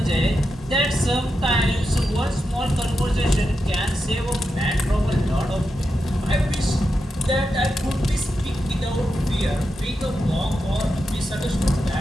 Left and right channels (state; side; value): normal; both; correlation 0.88